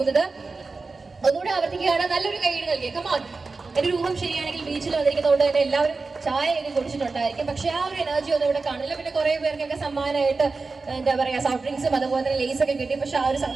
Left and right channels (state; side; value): quieter; left; 4.0 dB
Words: ഒന്നുകൂടെ ആവർത്തിക്കുകയാണ്, നല്ലൊരു കൈയ്യടി നൽകിയ കമാൻ. എൻ്റെ ഒരു ഊഹം ശരിയാണെങ്കിൽ ബീച്ചിൽ വന്നിരിക്കുന്നതുകൊണ്ട് തന്നെ എല്ലാവരും ചായയൊക്കെ കുടിച്ചിട്ടുണ്ടായിരിക്കും, പക്ഷെ ആ ഒരു എനർജി ഒന്നും ഇവിടെ കാണില്ല. പിന്നെ കുറേ പേർക്കൊക്കെ സമ്മാനമായിട്ട് എന്താ പറയുക സോഫ്റ്റ് ഡ്രിങ്ക്സും അതുപോലെ തന്നെ ലേസ് ഒക്കെ കിട്ടി, പക്ഷെ ആ ഒരു